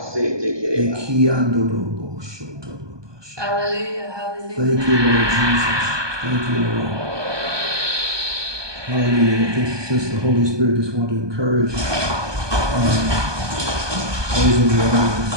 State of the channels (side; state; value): left; late; 1.2 ms